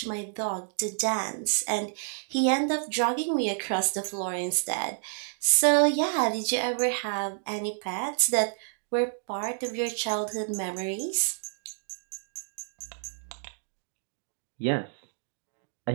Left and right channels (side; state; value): left; silent; digital silence